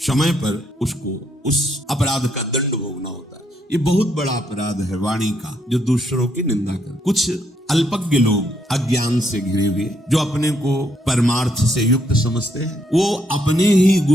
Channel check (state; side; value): normal; both; correlation 0.74